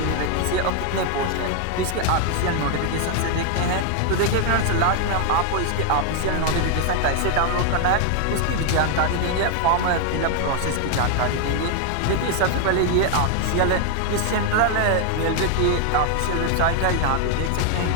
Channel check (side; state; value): both; different; correlation 0.00